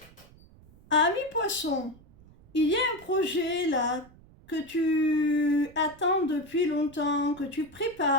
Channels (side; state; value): right; noise; rumble, 25 dB below the sound